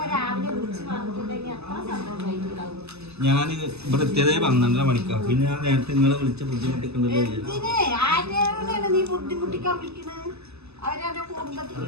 രാവിലെ വിളിച്ച് പറഞ്ഞിട്ടുണ്ടെങ്കിൽ അത്ര സന്തോഷമായിട്ടുണ്ടാവും. ഞാൻ ഇവിടെ എത്തിയതേ 12:30 മണിക്കാണ്. പിന്നെ ഞാൻ നേരത്തെ നിങ്ങളെ വിളിച്ച ബുദ്ധിമുട്ടിക്കണ്ടല്ലോ. ആരെയാണ് നീ ബുദ്ധിമുട്ടിക്കാൻ വിളിക്കണത്? അവരെ കുടുംബത്തിൽ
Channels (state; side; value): late; left; 0.79 ms